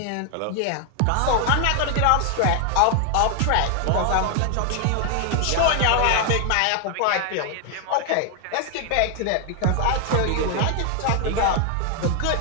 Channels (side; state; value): both; different; correlation 0.00